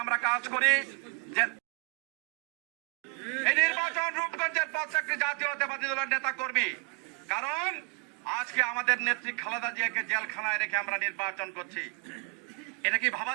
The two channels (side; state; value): left; quieter; 31.4 dB